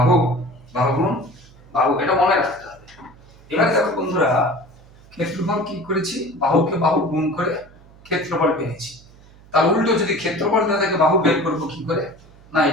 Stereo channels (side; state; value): right; noise; hum, 24 dB below the sound